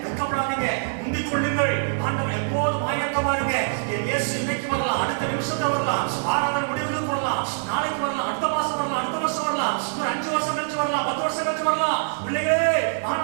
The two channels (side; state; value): left; silent; digital silence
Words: வெட்கப்படாதீங்க, முந்திக் கொள்ளுங்கள். ஆண்டவர் எப்போதும் ஆயத்தமா இருங்க. என் இயேசு இன்னைக்கு வரலாம், அடுத்த நிமிஷத்துல வரலாம், ஆராதனை முடிவுக்கு வரலாம், நாளைக்கு வரலாம், அடுத்த மாசம் வரலாம், அடுத்த வருஷம் வரலாம், ஒரு 5 வருஷம் கழிச்சு வரலாம், 10 வருஷம் கழிச்சு வரலாம். பிள்ளைகளே,